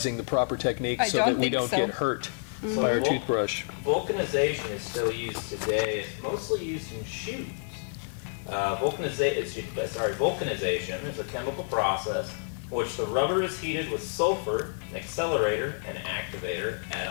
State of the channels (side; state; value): right; silent; 59 dB below the other